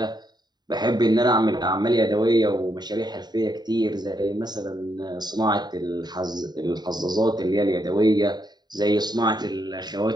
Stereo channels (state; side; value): late; left; 0.20 ms